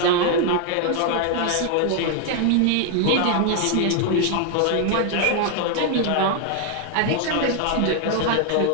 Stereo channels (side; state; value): both; different; correlation 0.00